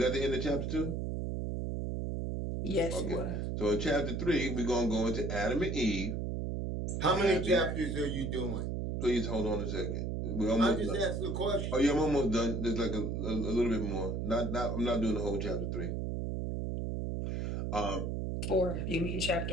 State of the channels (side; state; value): right; noise; hum, 2 dB below the sound